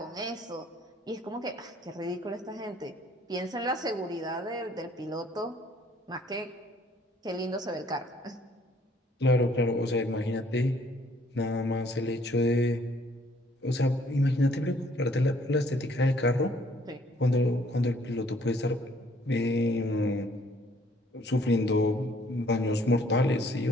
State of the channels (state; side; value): normal; both; correlation 0.62